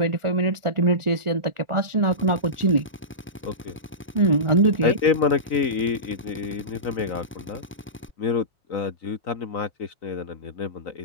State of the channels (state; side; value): normal; both; correlation -0.19